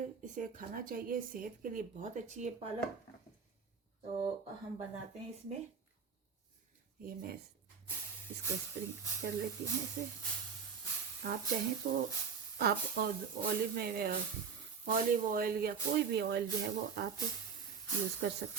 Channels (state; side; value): quieter; left; 6.2 dB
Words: इसे खाना चाहिए, सेहत के लिए बहुत अच्छी है पालक। तो हम बनाते हैं इसमें, ये मैं इसको स्प्रिंग कर लेती हूँ इसे। आप चाहें तो आप ऑलिव ऑयल या कोई भी ऑयल जो है वो आप यूज़ कर